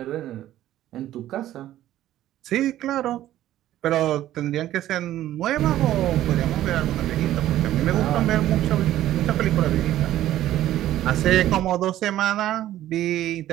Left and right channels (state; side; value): quieter; left; 13.4 dB